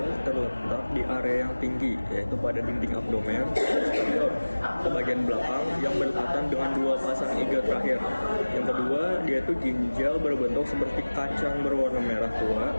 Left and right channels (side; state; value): both; inverted; correlation -1.00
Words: terletak di area yang tinggi, yaitu pada dinding abdomen, ke bagian belakang yang berdekatan dengan dua pasang iga terakhir. Yang kedua, dia itu ginjal berbentuk seperti kacang berwarna merah tua,